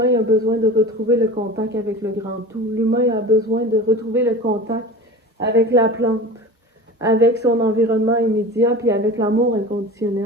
a besoin de retrouver le contact avec le grand tout. L'humain a besoin de retrouver le contact avec la plante, avec son environnement immédiat, puis avec l'amour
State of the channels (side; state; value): both; normal; correlation 0.34